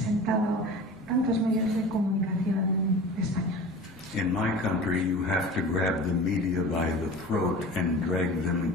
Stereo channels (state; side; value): normal; both; correlation 0.37